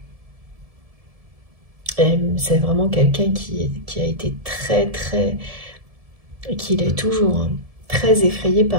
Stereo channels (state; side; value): late; left; 1.7 ms